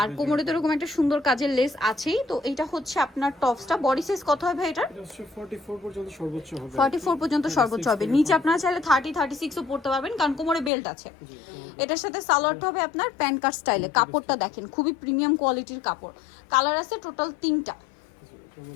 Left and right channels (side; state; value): right; drops out; at 10.7 s